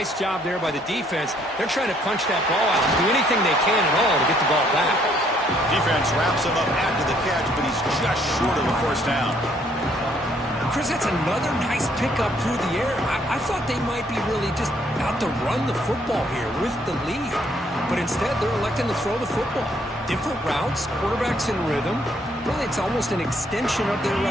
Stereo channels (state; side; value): normal; both; correlation 0.67